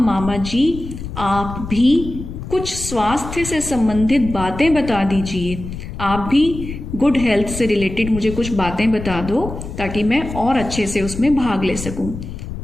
जी आप भी कुछ स्वास्थ्य से संबंधित बातें बता दीजिए। आप भी गुड हेल्थ से रिलेटेड मुझे कुछ बातें बता दो ताकि मैं और अच्छे से उसमें भाग ले सकूं।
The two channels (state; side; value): noise; left; rumble, 9 dB below the sound